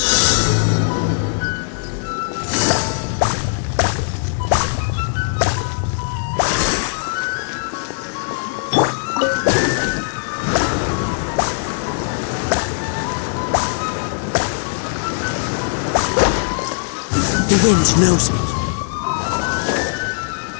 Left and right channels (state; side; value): silent; right; 64 dB below the other